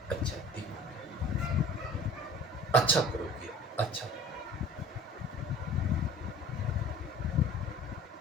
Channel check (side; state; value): both; normal; correlation 0.44